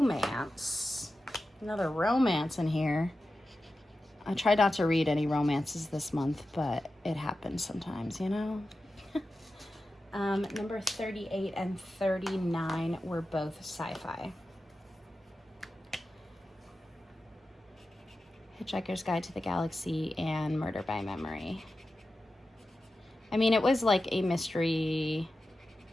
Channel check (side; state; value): both; normal; correlation 0.92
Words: Another romance in here. I tried not to read any romances this month, but it happens sometimes, you know? Number 38 and 39 were both sci-fi. Hitchhiker's Guide to the Galaxy and Murder by Memory. I mean, it was like a mystery